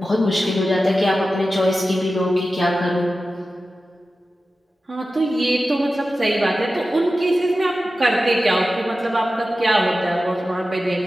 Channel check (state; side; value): normal; both; correlation 0.93